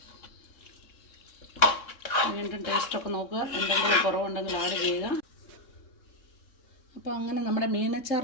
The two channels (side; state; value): right; late; 3.7 ms